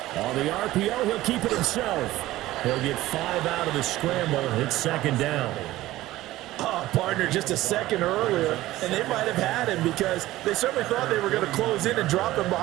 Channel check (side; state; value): left; quieter; 16.3 dB